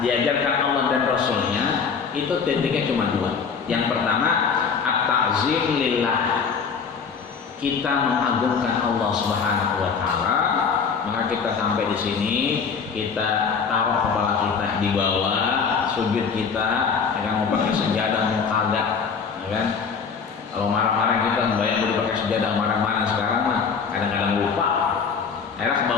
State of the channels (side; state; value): right; quieter; 5.9 dB